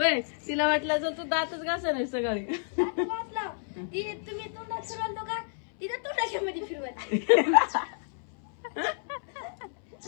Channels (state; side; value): silent; right; 58 dB below the other